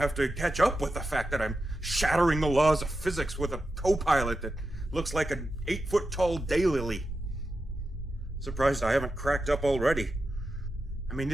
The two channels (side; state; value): both; normal; correlation 0.90